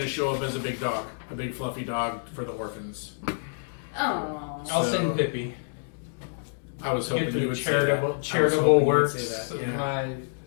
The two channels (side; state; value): right; silent; digital silence